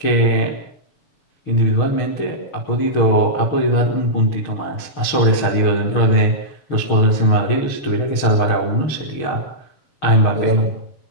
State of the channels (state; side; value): late; right; 6.5 ms